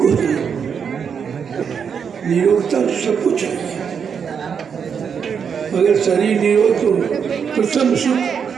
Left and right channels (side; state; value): left; quieter; 6.9 dB